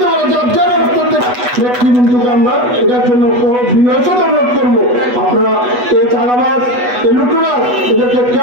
করে নেতৃবৃন্দকে আমরা এটার জন্য বিনয়সত অনুরোধ করবো। আপনারা এই চাঁদাবাজ এই লুটতরাজ এদেরকে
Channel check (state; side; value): late; left; 8.1 ms